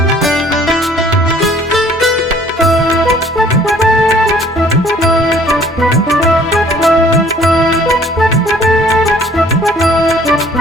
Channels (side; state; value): both; normal; correlation 0.55